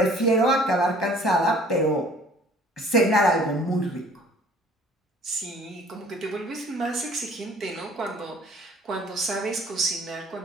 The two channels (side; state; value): both; normal; correlation 0.53